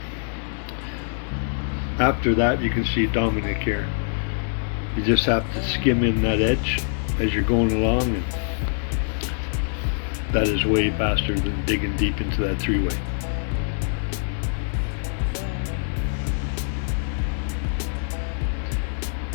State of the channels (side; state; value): right; silent; digital silence